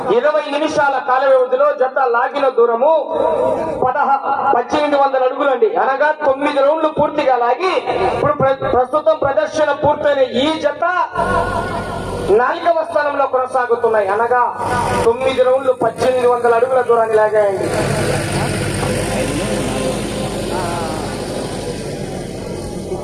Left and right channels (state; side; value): identical; both; correlation 1.00